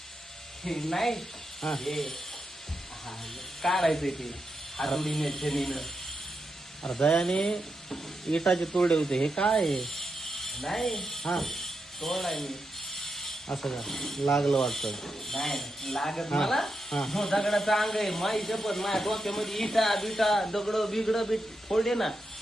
हे नाही हा. हे हा, काढायचंय ते हातोडीने छडीनं. अरे दयाने इटाचे तोडे होते हे काय आहे? नाही हा तोडाय मी असं का लागलं वाटतं नाही लागत हा, मला हा. हो दगडाचा अंग आहे माई शपथ माझ्या डोक्यामध्ये इटा बिटा दगड बिगड बीट फोडले ना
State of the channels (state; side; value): normal; both; correlation 0.86